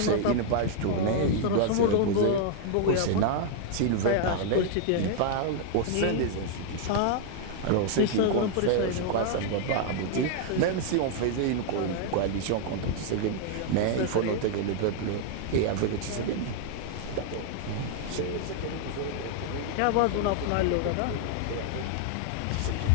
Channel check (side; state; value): both; different; correlation 0.00